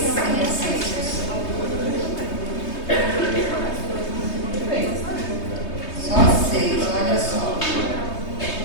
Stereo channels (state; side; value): late; right; 3.2 ms